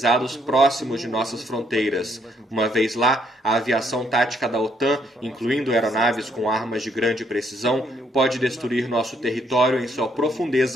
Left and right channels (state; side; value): normal; both; correlation 0.70